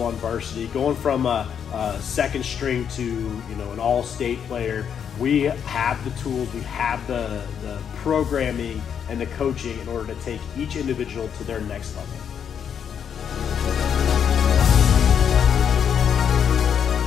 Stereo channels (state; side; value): quieter; right; 8.0 dB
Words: on varsity, going from a second string to an all-state player, we have the tools, we have the programming and the coaching in order to take each individual to their next level.